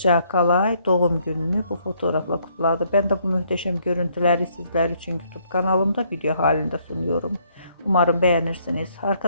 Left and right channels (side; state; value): both; inverted; correlation -0.68